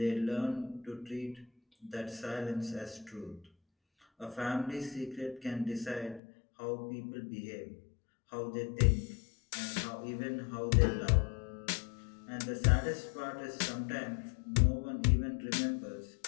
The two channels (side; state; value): right; drops out; at 6.2 s